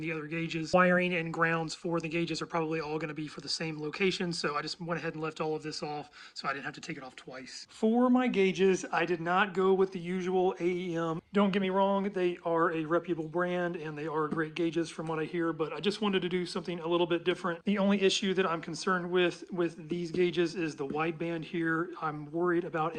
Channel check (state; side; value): identical; both; correlation 1.00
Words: other gauges. Wiring and grounds for the gauges are probably all going to be for the same location, so I just went ahead and left all of this off so I didn't have to take it off twice. For my gauges, I did not go with the usual AEM. Don't get me wrong, they are a reputable brand and they are great gauges from what I hear, but I just wanted to do something a little bit different. The only issue that I'm concerned with these gauges is the wideband here. I'm worried about